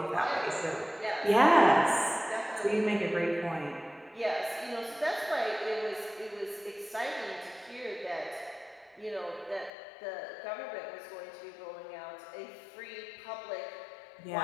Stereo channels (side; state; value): right; drops out; at 9.7 s